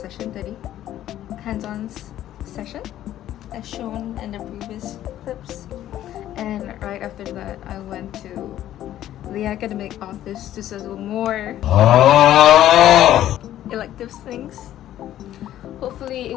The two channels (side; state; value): right; quieter; 12.5 dB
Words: today, hands-on session as shown in the previous clips. And right after that, I went to the academic office to settle more elective things. Hopefully